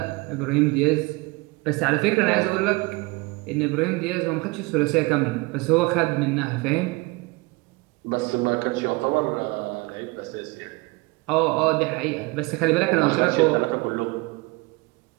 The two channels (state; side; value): quieter; left; 25.0 dB